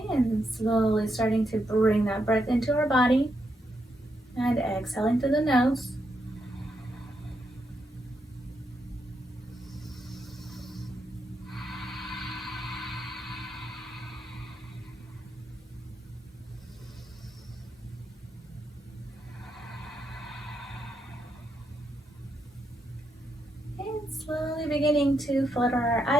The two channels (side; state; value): both; normal; correlation 0.81